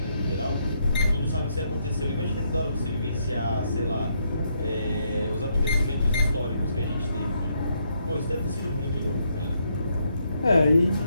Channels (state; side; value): inverted; both; correlation -0.76